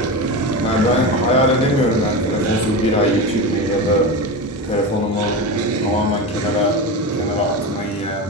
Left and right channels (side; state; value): both; normal; correlation 0.22